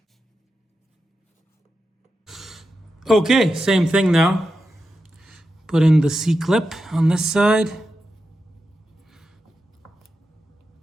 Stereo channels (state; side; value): normal; both; correlation 0.89